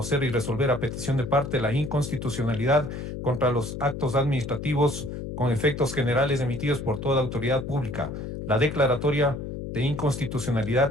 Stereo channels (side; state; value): left; noise; hum, 7 dB below the sound